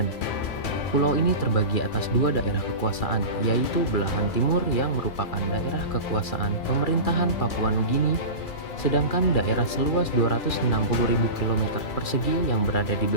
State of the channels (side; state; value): right; late; 2.3 ms